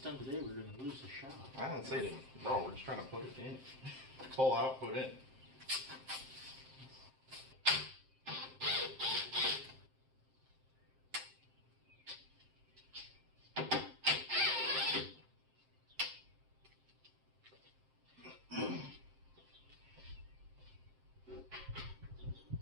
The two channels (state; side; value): late; left; 7.6 ms